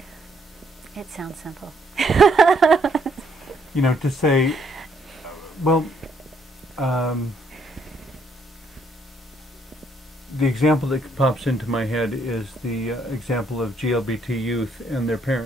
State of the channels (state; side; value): normal; both; correlation 0.70